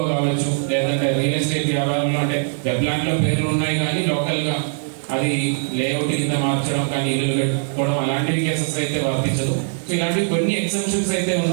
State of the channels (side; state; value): left; silent; digital silence